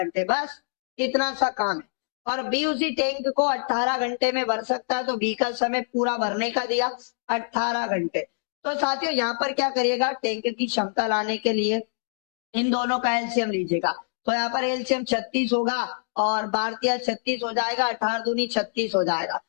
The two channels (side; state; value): right; silent; digital silence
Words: बस इतना सा काम है। और बी उसी टैंक को 18 घंटे में भर सकता है, तो बी का समय पूरा भरने का दिया 18 घंटे। तो साथियों यहाँ पर क्या करिएगा, टैंक की क्षमता लाने के लिए इन दोनों का एलसीएम लीजिएगा, तो यहाँ पर एलसीएम 36 होगा, और भारतीय 36 हो जाएगा, 18 दूनी 36 हो जाएगा।